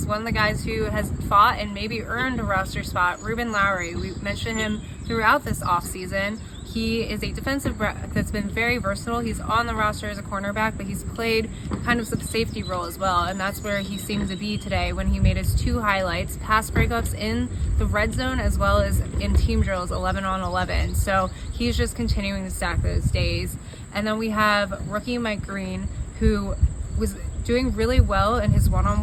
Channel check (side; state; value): both; identical; correlation 1.00